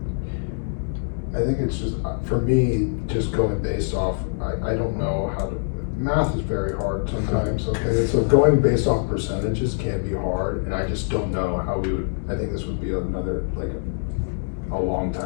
I think it's just, for me, just going based off, I don't know how to, math is very hard sometimes, okay? So going based off percentages can be hard, and I just don't know how we would, I think this would be another, like, a long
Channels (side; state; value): right; silent; digital silence